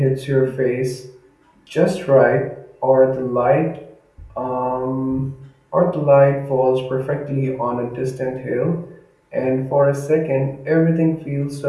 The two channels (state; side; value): identical; both; correlation 1.00